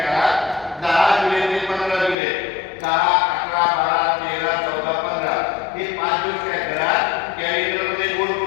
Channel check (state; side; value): drops out; right; at 2.1 s